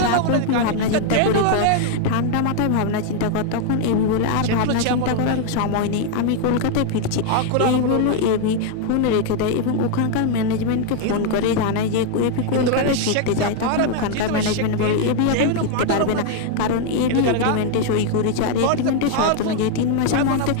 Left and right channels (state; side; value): different; both; correlation 0.00